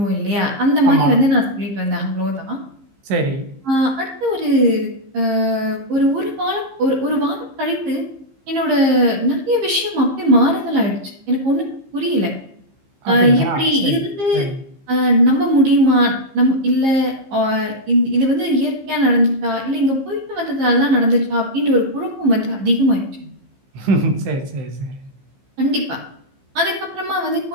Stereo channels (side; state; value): left; late; 15 ms